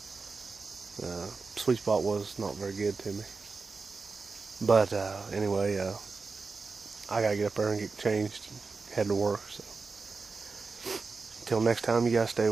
Sweet spot was not very good to me, but anyway, I gotta get up there and get changed and head to work. So until next time, you guys stay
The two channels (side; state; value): left; quieter; 4.4 dB